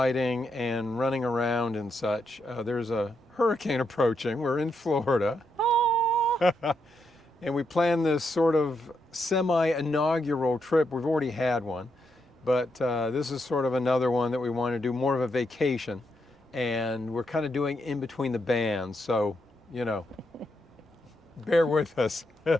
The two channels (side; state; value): both; normal; correlation 0.81